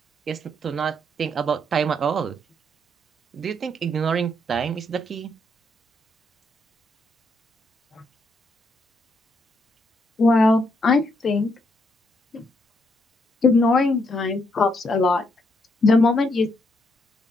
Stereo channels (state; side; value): normal; both; correlation 0.75